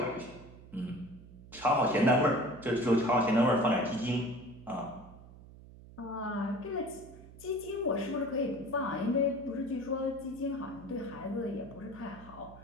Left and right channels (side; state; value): right; noise; hum, 19 dB below the sound